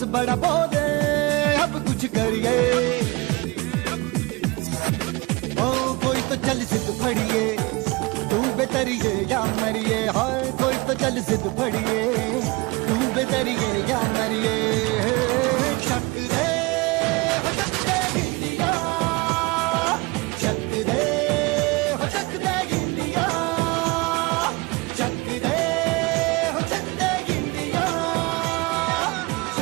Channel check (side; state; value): left; quieter; 24.8 dB